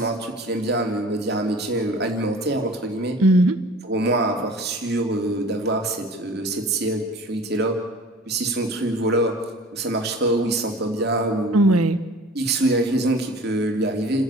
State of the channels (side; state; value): both; normal; correlation 0.44